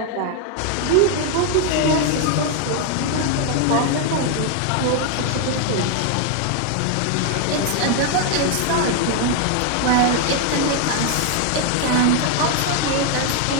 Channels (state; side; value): different; both; correlation 0.01